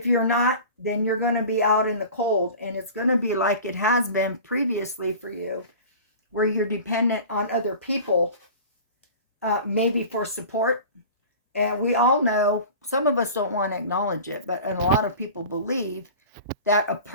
you're not, then you're going to be out in the cold, and it's going to be like it has been previously for you, where you're dependent on other people, maybe for support. And we all know, some of us don't want to acknowledge it, but a lot of people believe that a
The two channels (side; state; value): both; inverted; correlation -0.38